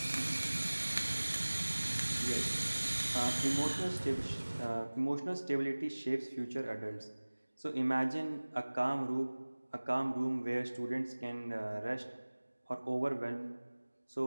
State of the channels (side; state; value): both; inverted; correlation -1.00